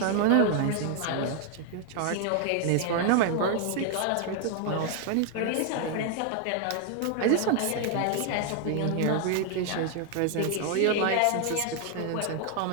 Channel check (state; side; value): different; both; correlation 0.00